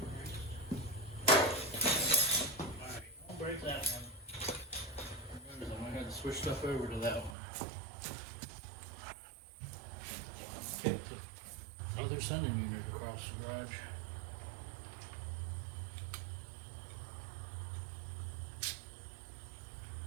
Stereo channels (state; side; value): drops out; left; at 7.4 s